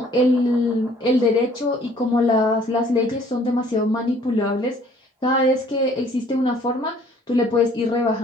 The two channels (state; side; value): normal; both; correlation 0.58